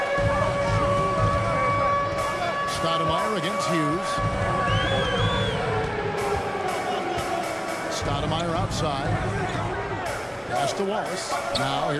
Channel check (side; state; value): both; identical; correlation 1.00